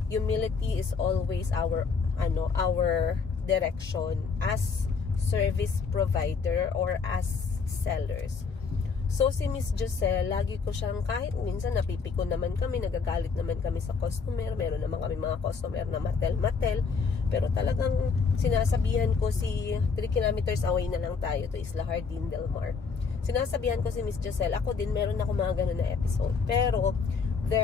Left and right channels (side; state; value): right; quieter; 5.2 dB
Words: humility is always our direction as service provider or as sellers. So, si Miss Giselle, lagi ko siyang, kahit minsan napipiko naman kami, nagagalit naman kami sa customer, meron naman kami mga customer na matel-matel, pero talagang sinasabihan ko si 3 kilometers away na lang tayo to Isla Hardin Del Mar. Sinasabihan ko si Miss Giselle, ako din meron ako mga ganun na episode, pero